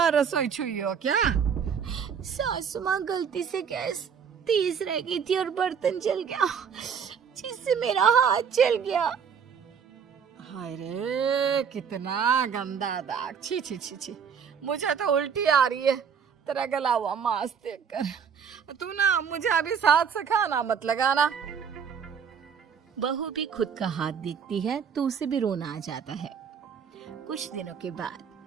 रसोई छुई हो क्या? सासू माँ गलती से गैस तेज रह गई थी और बर्तन जल गया, जिससे मेरा हाथ जल गया। हाय रे, कितना गंदा दाग। छी छी छी छी, मुझे तो उल्टी आ रही है तेरा गला हुआ मांस देखकर। तू ना मुझे अभी साथ से खाना मत लगाना। बहू भी खुद का हाथ देखती है तो उसे भी रोना आ जाता है। कुछ दिनों के बाद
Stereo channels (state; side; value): quieter; left; 7.0 dB